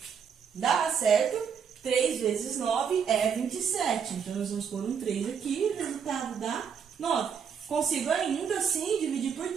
Dá, certo? 3 vezes 9 é 27. Então, nós vamos pôr um 3 aqui e o resultado dá 9. Consigo ainda assim dividir por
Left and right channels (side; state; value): left; quieter; 7.0 dB